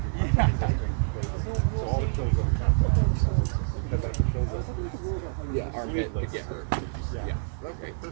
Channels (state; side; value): silent; left; 55 dB below the other